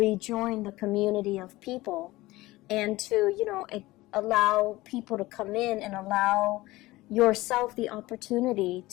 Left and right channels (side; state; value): right; quieter; 19.0 dB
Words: the community of people and to, allow people to come in and allow yourself the opportunity